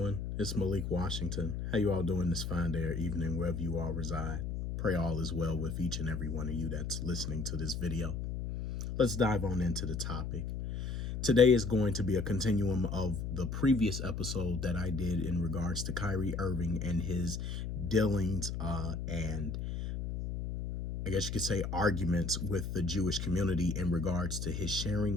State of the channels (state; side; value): noise; left; hum, 4 dB below the sound